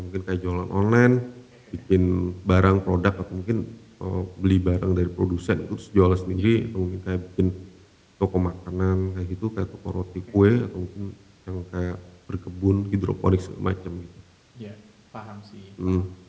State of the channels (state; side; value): identical; both; correlation 1.00